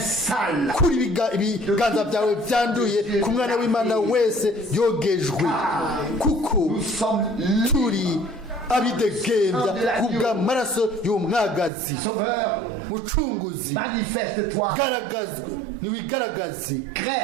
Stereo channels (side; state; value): left; drops out; at 11.7 s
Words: kuri ibiganza byawe byanduye ku mwana w'imana wese yogejwe, kuko nous sommes libres. turi abidegembya kubw'amaraso y'umwagazi. Sauveur, Mucunguzi, manifeste-toi, garagazwe niwigaragaze,